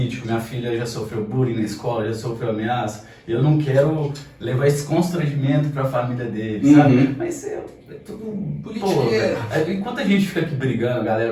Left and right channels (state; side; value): identical; both; correlation 1.00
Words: minha filha já sofreu bullying na escola, já sofreu ameaça, eu não quero levar esse constrangimento para a família dele, sabe? Mas é tudo politiqueiro. Enquanto a gente fica aqui brigando, a